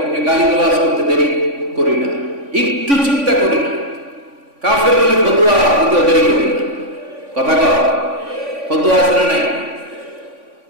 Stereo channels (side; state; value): left; late; 3.5 ms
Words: গালিগালাজ করতে দেরি করি না, একটু চিন্তা করি না। কাফের বলে ফতোয়া দিতে দেরি করি না। কথা কর, ফতোয়া আছে না নাই?